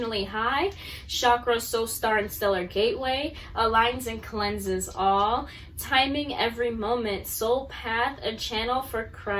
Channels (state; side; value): identical; both; correlation 1.00